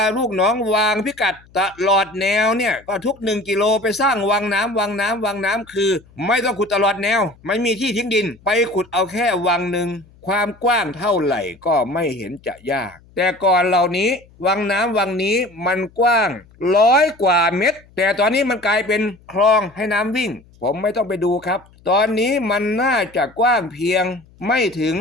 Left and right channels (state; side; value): noise; left; hum, 27 dB below the sound